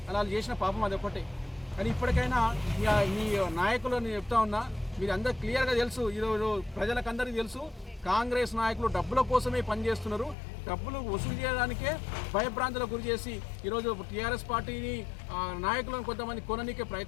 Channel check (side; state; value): right; drops out; at 10.4 s